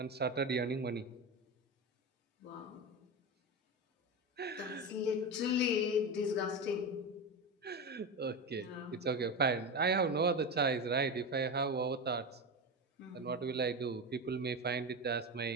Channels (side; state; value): both; normal; correlation 0.20